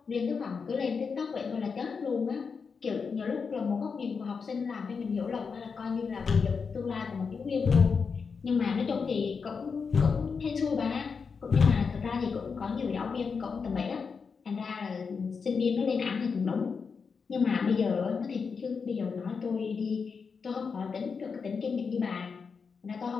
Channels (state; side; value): quieter; right; 5.5 dB